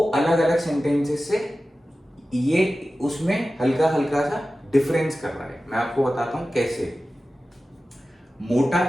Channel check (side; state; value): both; normal; correlation 0.95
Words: अलग अलग सेंटेंसेस से ये उसमें हल्का हल्का सा डिफरेंस कर रहा है। मैं आपको बताता हूं कैसे। मोटा